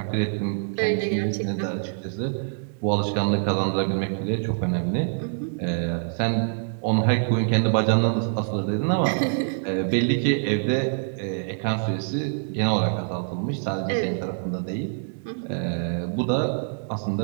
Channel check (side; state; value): left; silent; digital silence